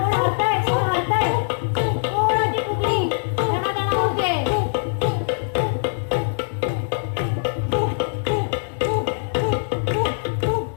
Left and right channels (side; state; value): right; silent; digital silence